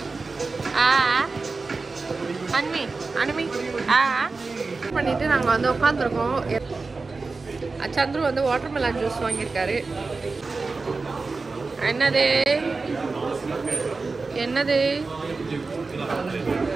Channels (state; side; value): quieter; left; 4.0 dB